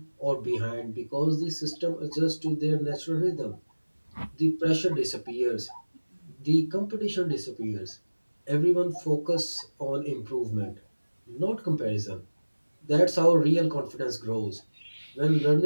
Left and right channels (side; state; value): both; inverted; correlation -1.00